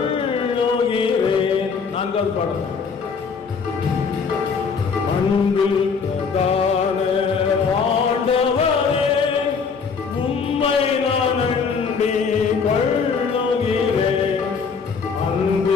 4வது பாடல். அன்பில் பிரதான ஆண்டவரே, உம்மை நான் அண்டி கொள்ளுகிறேன்.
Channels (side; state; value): right; quieter; 5.6 dB